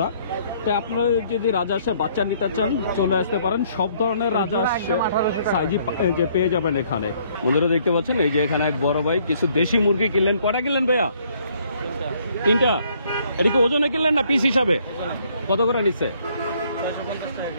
তাই আপনারা যদি রাজা হাঁসের বাচ্চা নিতে চান চলে আসতে পারেন। সব ধরনের রাজা হাঁস সাইজই যে পেয়ে যাবেন এখানে। বন্ধুরা দেখতে পাচ্ছেন এই যে এখানে এক বড় ভাই কিছু দেশি মুরগি কিনলেন। কটা কিনলেন ভাইয়া? 3টা। এটা কি ওজনে কিনলেন না পিস হিসাবে? কত করে নিচ্ছে?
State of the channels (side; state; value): both; inverted; correlation -0.65